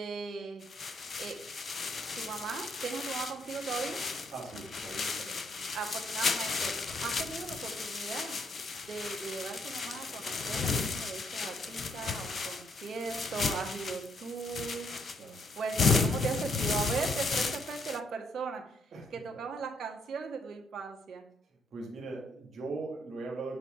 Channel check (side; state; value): both; normal; correlation 0.71